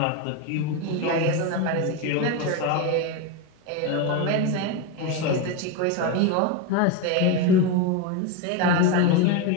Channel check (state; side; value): different; both; correlation 0.04